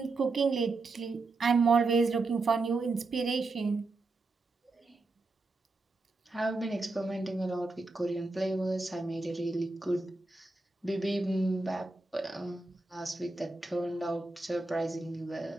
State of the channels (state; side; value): quieter; left; 3.4 dB